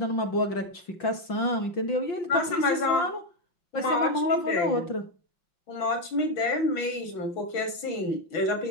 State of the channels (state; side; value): late; right; 6.1 ms